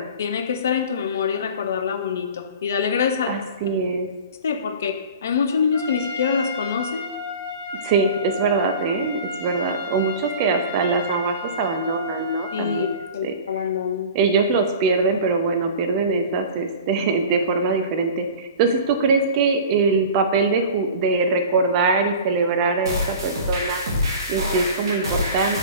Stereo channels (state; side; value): inverted; both; correlation -0.38